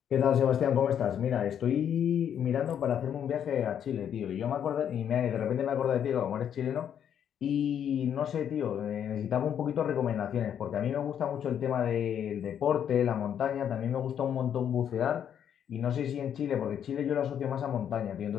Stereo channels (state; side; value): quieter; right; 9.0 dB